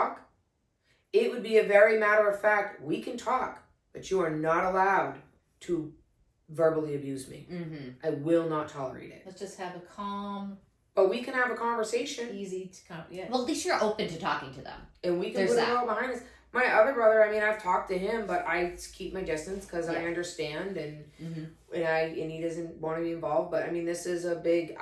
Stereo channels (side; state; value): both; identical; correlation 1.00